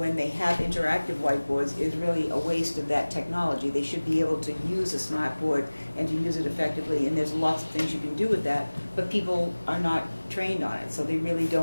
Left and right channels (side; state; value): both; inverted; correlation -1.00